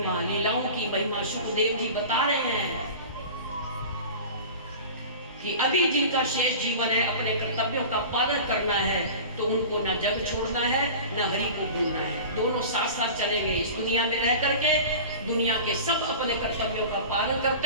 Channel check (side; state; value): both; inverted; correlation -0.36